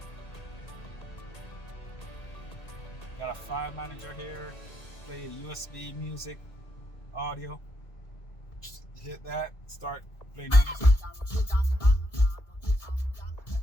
Got a file manager here. Play a USB music audio. Just hit that, start playing music.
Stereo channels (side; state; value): right; late; 1.6 ms